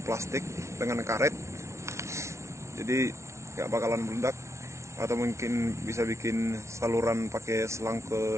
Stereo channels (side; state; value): left; late; 0.13 ms